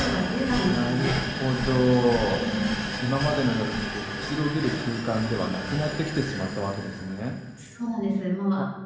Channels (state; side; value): identical; both; correlation 1.00